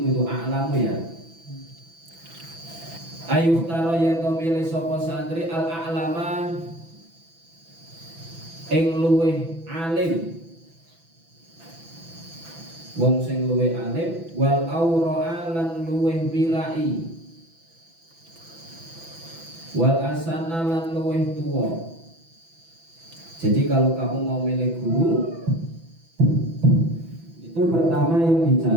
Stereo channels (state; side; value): late; left; 6.0 ms